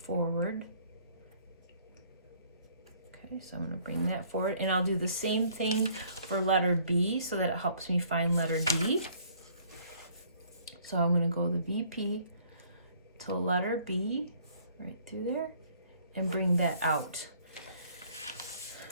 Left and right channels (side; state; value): both; inverted; correlation -0.60